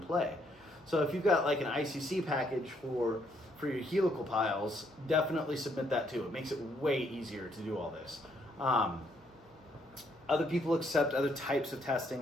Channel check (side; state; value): both; normal; correlation 0.71